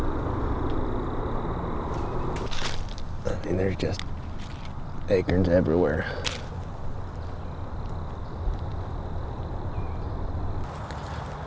I mean, there's just acorns everywhere.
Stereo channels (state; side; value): identical; both; correlation 1.00